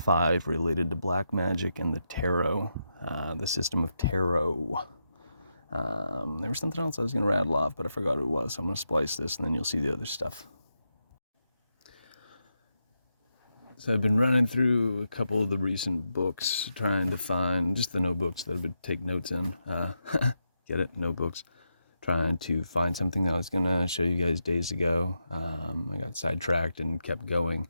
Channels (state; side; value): inverted; both; correlation -0.85